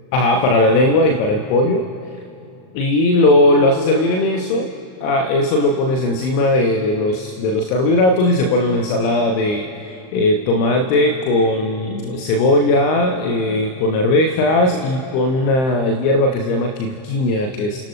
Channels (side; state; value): right; late; 38 ms